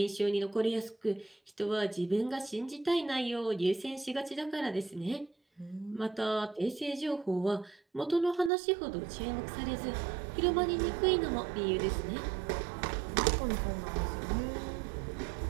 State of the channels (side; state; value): left; drops out; at 8.5 s